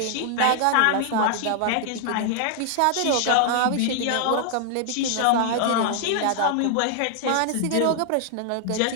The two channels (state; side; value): different; both; correlation 0.00